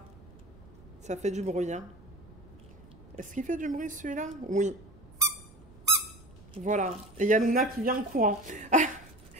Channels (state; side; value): noise; right; rumble, 22 dB below the sound